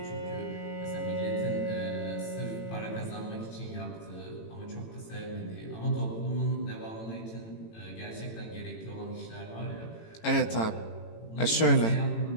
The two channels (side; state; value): right; late; 18 ms